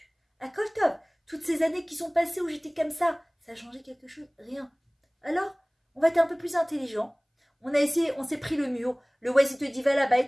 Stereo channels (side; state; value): both; identical; correlation 1.00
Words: à top, toutes ces années qui sont passées où j'étais comme ça a changé quelque chose? Rien. Alors, on va être un peu plus intelligent. On a essayé, on s'est pris le mur. Le Waze, il te dit, va là-bas et